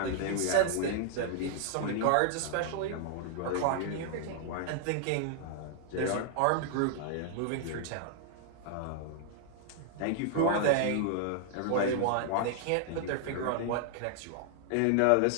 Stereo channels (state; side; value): different; both; correlation 0.00